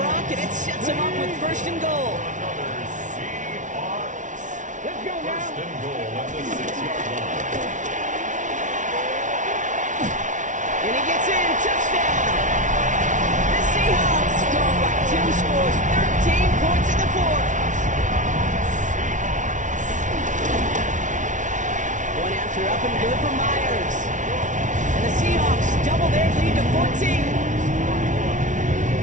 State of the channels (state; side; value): late; left; 0.37 ms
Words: and it sets him up with first and goal. Another Seahawks. Let's go now. First and goal at the 6-yard line. And he gets in, touchdown! The Seahawks go up by 2 scores, 13 points in the fourth. One after up and good for Myers. And the Seahawks double their lead to 14.